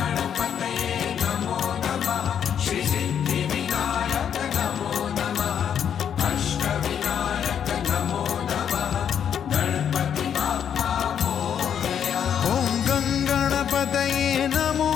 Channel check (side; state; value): right; quieter; 8.5 dB